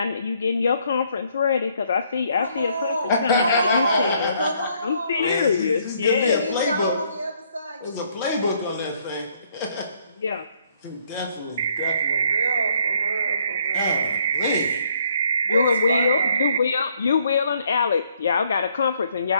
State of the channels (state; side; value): inverted; both; correlation -0.67